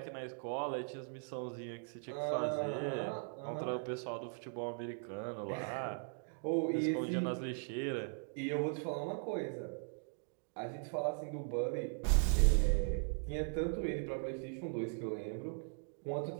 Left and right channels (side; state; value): left; silent; 52 dB below the other